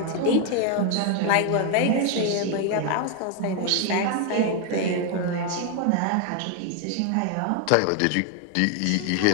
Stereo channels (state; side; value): different; both; correlation 0.01